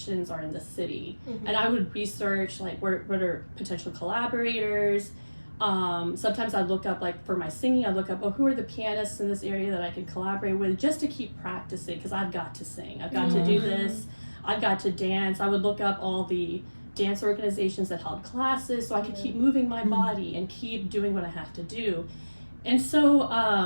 are in the city? And I would research like what are potential collaborators. Sometimes I look up, like for my singing, I look up, who are the pianists in this area that I can collaborate with just to keep practicing, because I've got to sing, I've got to do this, I've got to dance. I would look up all the dance organizations that held classes so I could keep moving my body and keep doing what I have to do. And so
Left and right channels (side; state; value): both; inverted; correlation -1.00